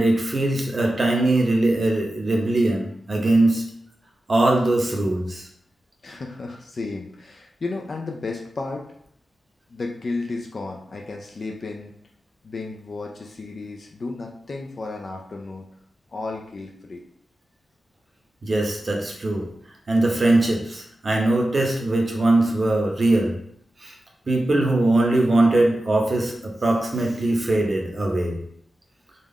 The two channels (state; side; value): normal; both; correlation 0.93